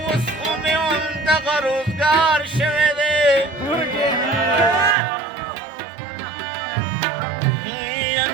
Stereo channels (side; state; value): left; drops out; at 5.0 s